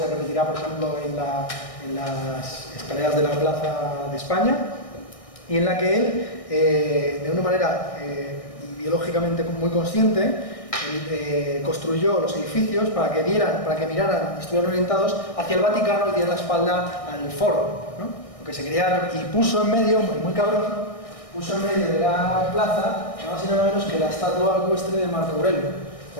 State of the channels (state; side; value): late; right; 1.6 ms